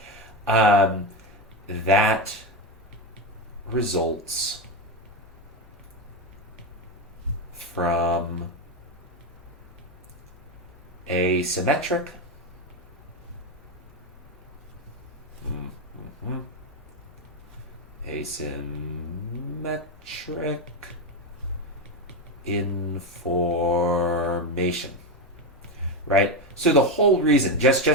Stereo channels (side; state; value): both; normal; correlation 0.12